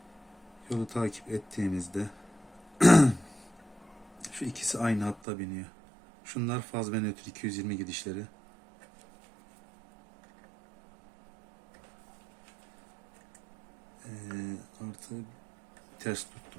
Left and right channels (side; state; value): left; drops out; at 5.2 s